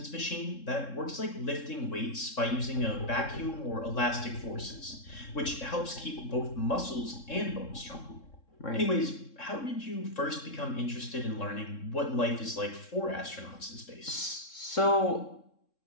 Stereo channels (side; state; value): right; late; 3.7 ms